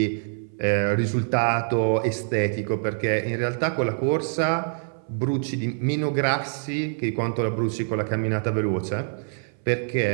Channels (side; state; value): left; silent; 60 dB below the other